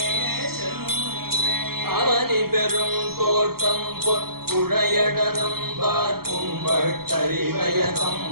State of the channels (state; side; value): late; left; 0.94 ms